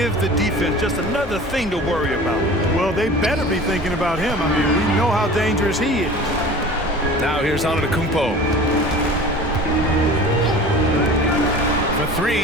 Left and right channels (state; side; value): normal; both; correlation 0.41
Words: the defense just another thing to worry about. Well, they better be thinking about him. I mean, we know how dangerous he is. Now here's Antetokounmpo. For